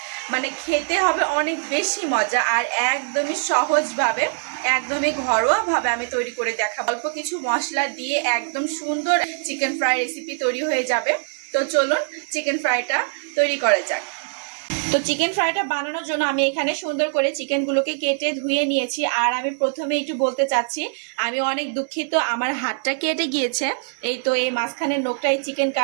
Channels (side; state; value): left; silent; 64 dB below the other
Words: মানে খেতে হবে অনেক বেশি মজা। আর একদমই সহজভাবে, একদমই ঘরোয়াভাবে আমি তৈরি করে দেখাবো। অল্প কিছু মশলা দিয়ে একদম সুন্দর চিকেন ফ্রাই রেসিপি তৈরি হয়ে যাবে। তো চলুন চিকেন ফ্রাইটা তৈরি করা যাক। তো চিকেন ফ্রাইটা বানানোর জন্য আমি এখানে সুন্দর করে চিকেনগুলোকে কেটে ধুয়ে নিয়েছি। আর আমি প্রথমে একটু বলতে চাচ্ছি, আমি অনেক দুঃখিত, আমার হাতটা কেটে গিয়েছে। এই তো এই মাঝখানের নোকটা এই চিকেন